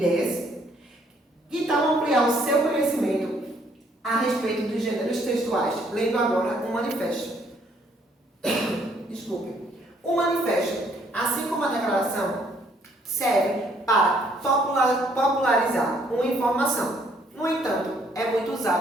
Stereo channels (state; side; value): normal; both; correlation 0.66